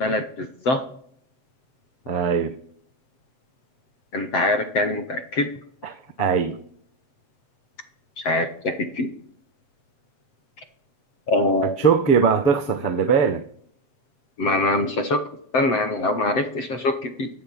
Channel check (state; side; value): late; right; 7.7 ms